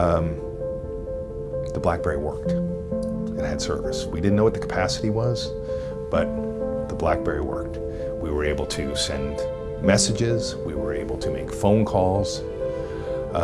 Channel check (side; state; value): both; identical; correlation 1.00